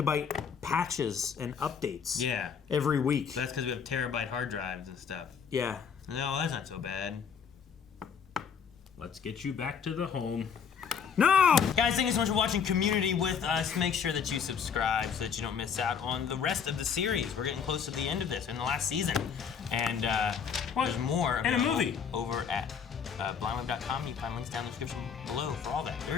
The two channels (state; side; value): quieter; right; 6.9 dB